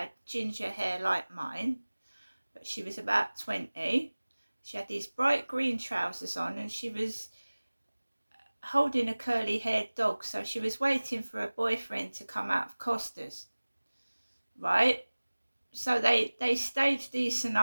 ginger hair like mine, but she was about 20. She had these bright green trousers on and she was holding a curly haired dog, so she was waiting for her boyfriend to come out of Costa's, right? So they stage these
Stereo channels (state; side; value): inverted; both; correlation -1.00